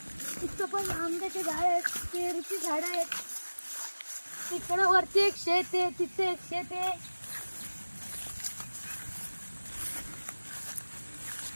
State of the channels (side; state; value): both; inverted; correlation -1.00